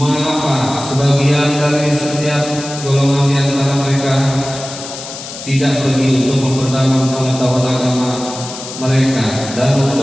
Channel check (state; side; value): noise; left; hiss, 11 dB below the sound